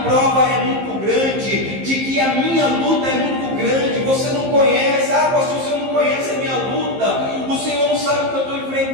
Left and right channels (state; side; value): late; left; 15 ms